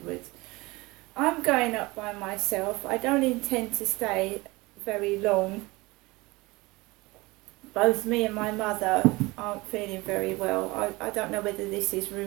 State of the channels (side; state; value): left; quieter; 22.6 dB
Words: I'm going up by myself. I don't intend to stay very long. Both me and my mother aren't feeling very well. I don't know whether this is